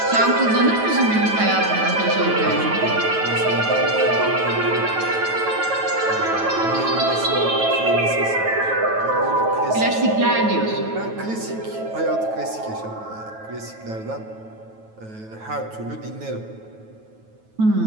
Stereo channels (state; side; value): late; left; 9.2 ms